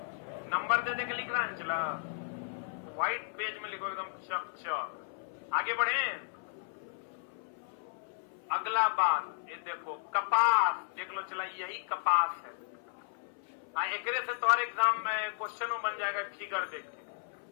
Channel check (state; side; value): silent; right; 55 dB below the other